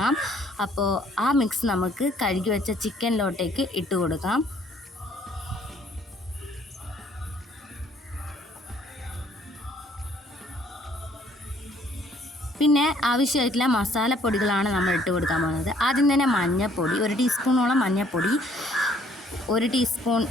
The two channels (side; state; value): both; normal; correlation 0.62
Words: അപ്പോൾ ആ മിക്സ് നമുക്ക് കഴുകി വെച്ച ചിക്കനിലോട്ടേക്ക് ഇട്ട് കൊടുക്കാം. പിന്നെ ആവശ്യമായിട്ടുള്ള മസാലപ്പൊടികളാണ് നമ്മൾ ഇട്ട് കൊടുക്കാൻ പോകുന്നത്. ആദ്യം തന്നെ മഞ്ഞൾപ്പൊടി, 1 ടീസ്പൂണോളം മഞ്ഞൾപ്പൊടി, 1 ടീസ്പൂൺ